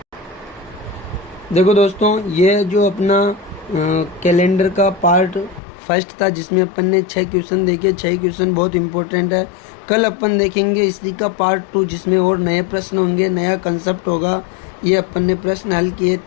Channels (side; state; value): right; drops out; at 5.6 s